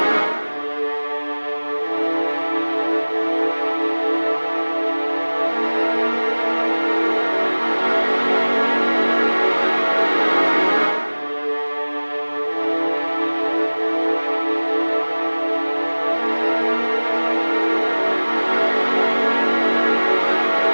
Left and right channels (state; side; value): inverted; both; correlation -1.00